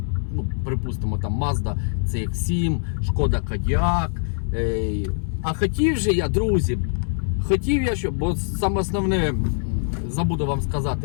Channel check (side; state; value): right; silent; 61 dB below the other